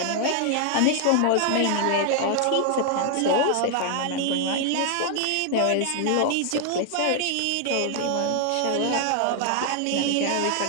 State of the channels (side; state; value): both; different; correlation 0.00